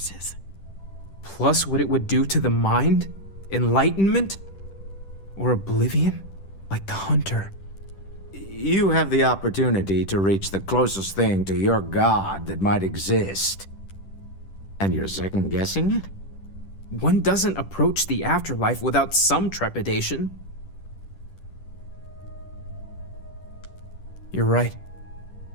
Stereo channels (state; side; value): late; right; 10 ms